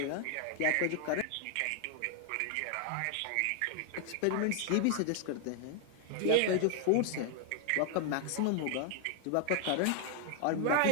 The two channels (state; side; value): different; both; correlation 0.00